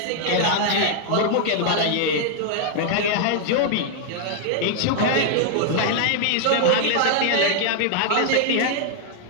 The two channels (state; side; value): different; both; correlation 0.00